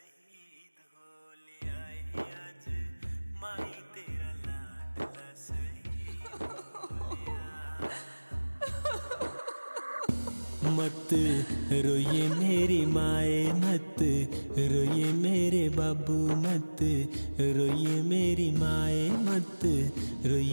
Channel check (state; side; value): inverted; both; correlation -1.00